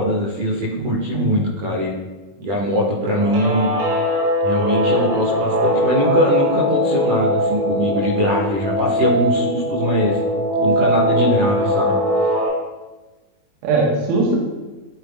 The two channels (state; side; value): late; left; 20 ms